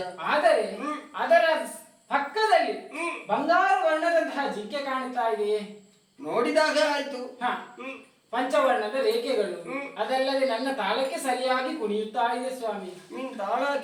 ಆದರೆ ಅದರ ಪಕ್ಕದಲ್ಲಿ ಬಂಗಾರ ವರ್ಣದಂತಹ ಜಿಂಕೆ ಕಾಣುತ್ತಾ ಇದೆ. ನೋಡಿದಾಗ ಆಯ್ತು. ಪಂಚವರ್ಣದ ರೇಖೆಗಳು, ಅದಲ್ಲದೆ ನನ್ನ ತಾಳಕ್ಕೆ ಸರಿಯಾಗಿ ಕುಣಿಯುತ್ತಾ ಇದೆ ಸ್ವಾಮಿ. ನೀನ್ ತಾಳ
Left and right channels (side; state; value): both; identical; correlation 1.00